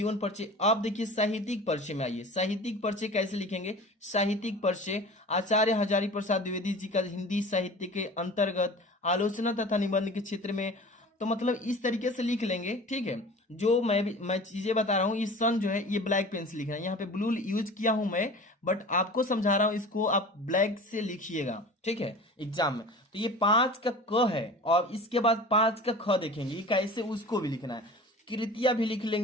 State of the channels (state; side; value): normal; both; correlation 0.39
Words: परिचय। अब देखिए साहित्यिक परिचय में आइए, साहित्यिक परिचय कैसे लिखेंगे। साहित्यिक परिचय आचार्य हजारी प्रसाद द्विवेदी जी का हिंदी साहित्य के अंतर्गत आलोचना तथा निबंध के क्षेत्र में, तो मतलब इस तरीके से लिख लेंगे, ठीक है। जो मैं चीजें बता रहा हूँ, इस सन जो है ये ब्लैक पेन से लिखना है, यहाँ पे ब्लू यूज किया हूं मैं, बट आपको समझा रहा हूं, इसको आप ब्लैक से लिखिएगा, ठीक है, एग्जाम में। तो ये 5 का क है, और इसके बाद 5 का ख देखेंगे, ये कैसे उसको भी लिखना है। कृतिया भी लिख